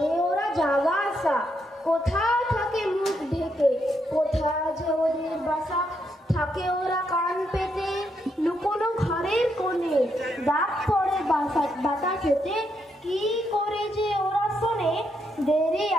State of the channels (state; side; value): normal; both; correlation 0.78